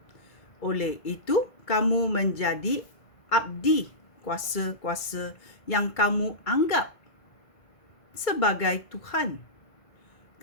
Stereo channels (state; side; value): late; right; 2.3 ms